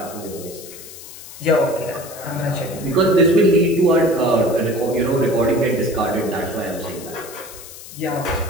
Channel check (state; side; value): noise; left; hiss, 15 dB below the sound